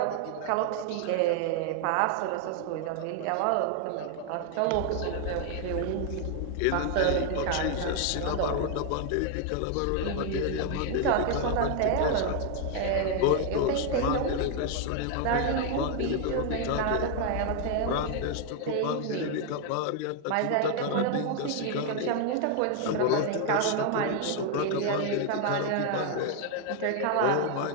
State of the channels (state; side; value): different; both; correlation 0.00